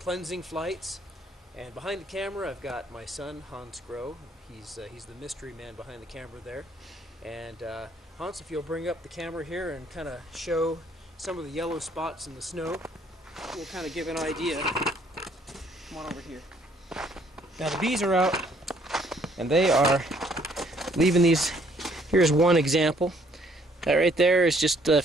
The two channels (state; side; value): normal; both; correlation 0.64